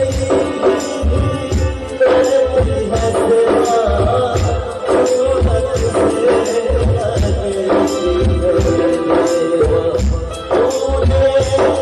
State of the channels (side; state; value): both; identical; correlation 1.00